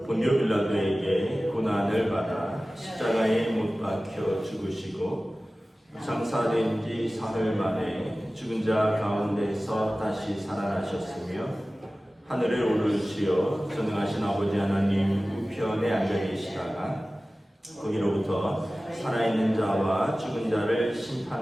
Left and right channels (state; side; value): normal; both; correlation 0.97